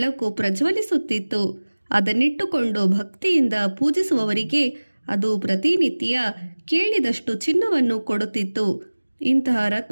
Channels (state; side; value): inverted; both; correlation -1.00